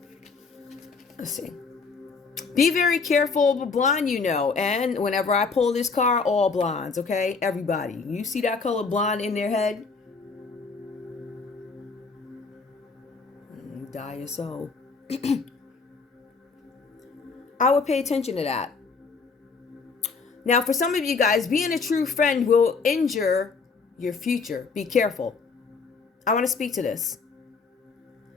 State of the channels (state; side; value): quieter; right; 4.7 dB